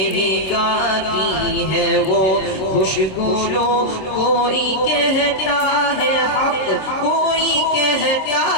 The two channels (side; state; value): right; late; 26 ms